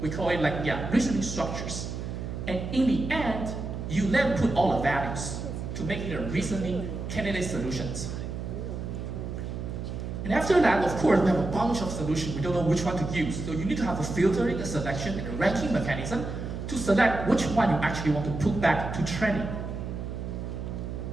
we call it reasoning structures. And in the end, you then put all the values to make it a reasoning candidate solutions. And after that, of course, we have a bunch of solutions. We don't know which one to use. So you need to have a filtering, a selection, and a ranking mechanism to select which one you actually want to put back to training.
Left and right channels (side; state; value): right; noise; hum, 6 dB below the sound